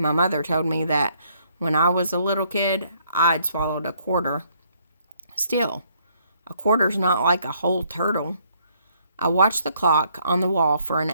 my mother told me that when I was a little kid, I'd swallowed a quarter. Still, a quarter's not like a whole turtle. I watched the clock on the wall for an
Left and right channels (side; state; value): both; inverted; correlation -0.68